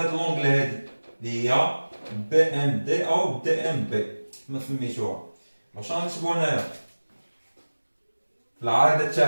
لونغل هادي اللي هي BMD أو DMB كما سميتوها. واش غنكتبو هنايا في العارضة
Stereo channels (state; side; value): inverted; both; correlation -1.00